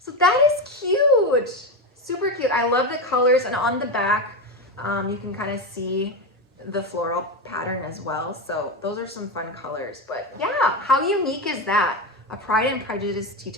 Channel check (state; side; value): normal; both; correlation 0.15